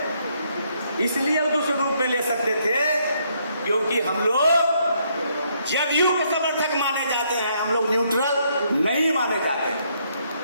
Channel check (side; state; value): both; inverted; correlation -0.72